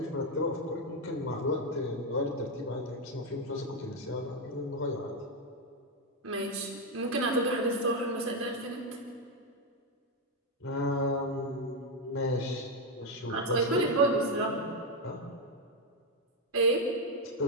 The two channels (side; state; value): both; normal; correlation 0.05